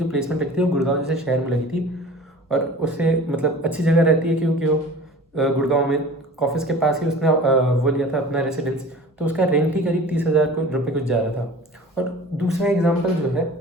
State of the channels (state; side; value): normal; both; correlation 0.42